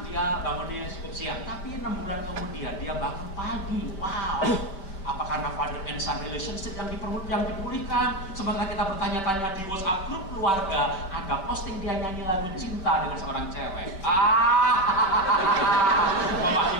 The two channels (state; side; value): late; right; 5.2 ms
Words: dia bangunnya cukup siang. Tapi 6 bulan kemudian dia bangun pagi. Wow. Apa karena Father and Son relationship yang dipulihkan? Sementara kita bertanya-tanya di WhatsApp grup keluarga, ada posting dia nyanyi lagu cinta dengan seorang cewek.